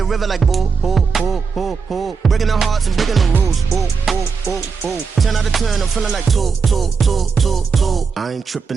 river like boo, boo, boo, boo, boo. Breaking the hearts and breaking the rules. Ooh, ooh, ooh, ooh. 10 out of 10, I'm feeling like two. I ain't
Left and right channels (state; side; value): quieter; left; 5.4 dB